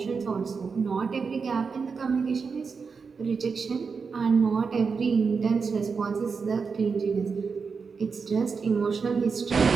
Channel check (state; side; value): quieter; left; 5.3 dB